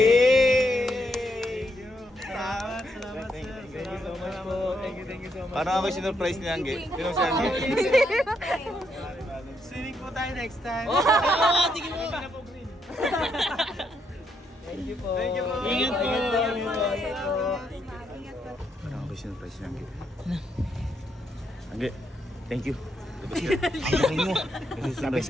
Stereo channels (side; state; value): both; normal; correlation 0.78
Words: Salamat. Thank you so much po. Thank you so much. Parang ako sinurprise ni Angge. Sinong si Angge? Swimming po tayo next time. Tingin mo! Thank you po. Ingat po. Parang ako sinurprise ni Angge. Angge, thank you. Labas